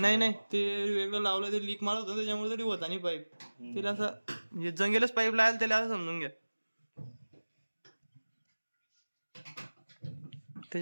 नाही ते वेगळं लावलंय, ते लीक मारत होतं त्याच्यामुळे तरी होता नाही पाईप. त्याला असं म्हणजे जंगेलच पाईप लावायला त्याला असं समजून घ्या,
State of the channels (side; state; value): both; inverted; correlation -1.00